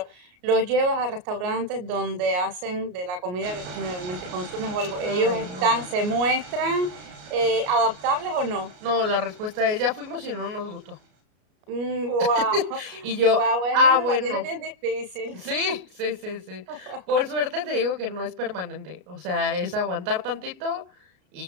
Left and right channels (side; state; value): left; late; 33 ms